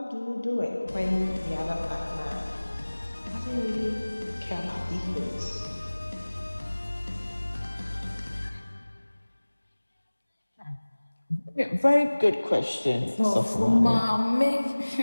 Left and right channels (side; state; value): both; inverted; correlation -1.00